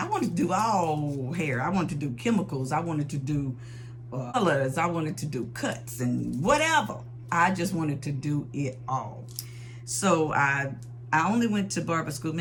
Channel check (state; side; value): identical; both; correlation 1.00